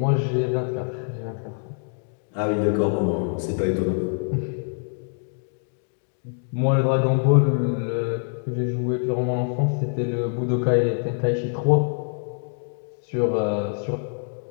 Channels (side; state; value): right; silent; digital silence